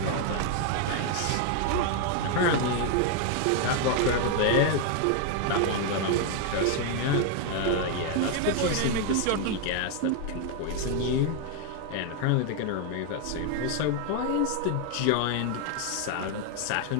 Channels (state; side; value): different; both; correlation 0.01